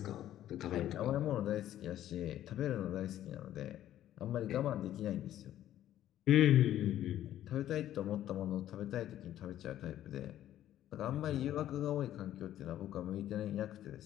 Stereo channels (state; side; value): quieter; right; 12.3 dB